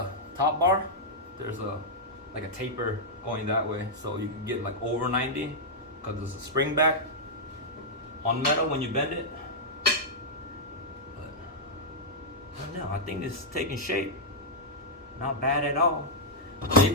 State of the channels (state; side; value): normal; both; correlation -0.07